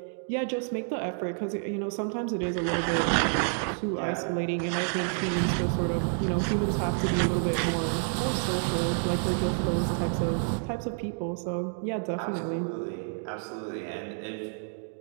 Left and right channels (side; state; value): left; silent; 55 dB below the other